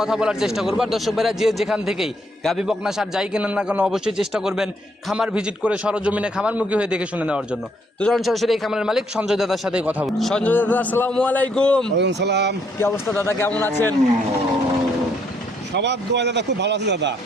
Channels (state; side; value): normal; both; correlation 0.71